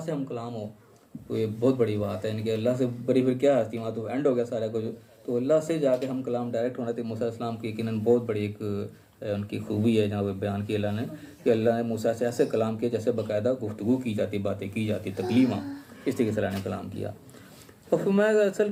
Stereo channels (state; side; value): identical; both; correlation 1.00